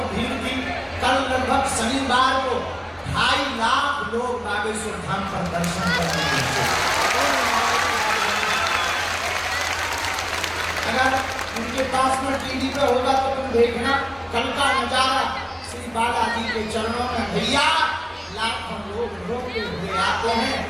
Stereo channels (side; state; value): both; identical; correlation 1.00